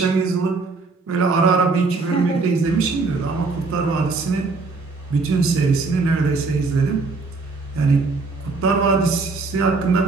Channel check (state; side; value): quieter; left; 3.9 dB